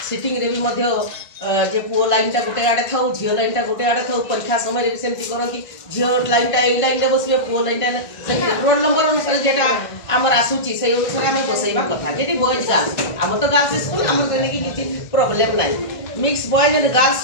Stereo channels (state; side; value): late; right; 1.5 ms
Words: सिटिंग रे भी मध्य जे पुओ लाइन टा गोटे आड़े था झील लाइन टा गोटे आड़े था परीक्षा समय भी सेमती करती झील लाइन टा ए लाइन रे बसबे पुओ लाइन टा रोल नंबर अनुसार जेटा आमर आसुची से अनुसार आम बसैबा कथा जेटी बॉयज गर्ल्स आम तो गर्ल्स स्कूल आम कि प्रॉब्लम नहीं mix boys and girls